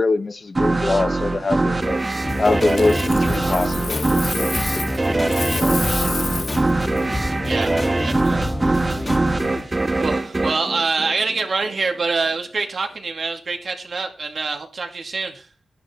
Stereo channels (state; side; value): normal; both; correlation 0.95